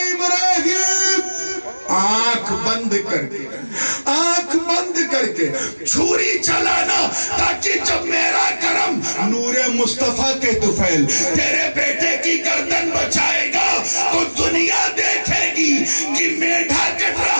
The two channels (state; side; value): inverted; both; correlation -1.00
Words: ابراہیم آنکھ بند کر کے چھری چلانا، تاکہ جب میرا کرم نور مصطفیٰ کے طفیل تیرے بیٹے کی گردن بچائے گا تو دنیا دیکھے گی کہ میڈھا کٹ